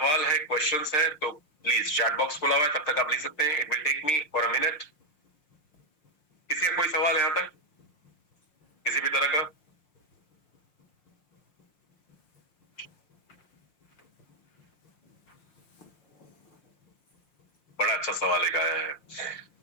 है, क्वेश्चंस है तो प्लीज चैट बॉक्स खुला हुआ है, तब तक आप लिख सकते हैं। It will take me for a minute. किसी का कोई सवाल है यहां तक किसी भी तरह का? बड़ा अच्छा सवाल एक आया है।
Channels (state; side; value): late; right; 5.6 ms